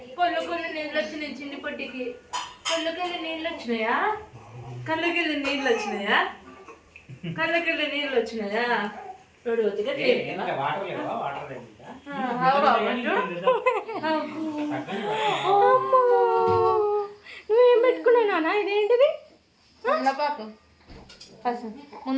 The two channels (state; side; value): identical; both; correlation 1.00